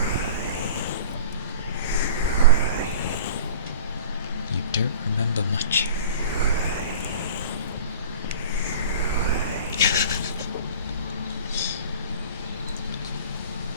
You don't remember much.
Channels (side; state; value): both; inverted; correlation -0.41